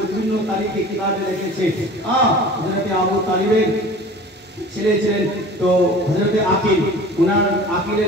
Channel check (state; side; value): normal; both; correlation 0.42